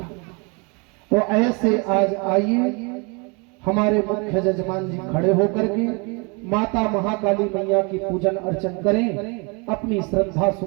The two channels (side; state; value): left; quieter; 30.8 dB